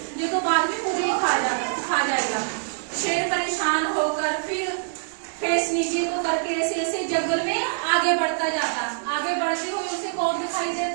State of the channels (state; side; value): silent; left; digital silence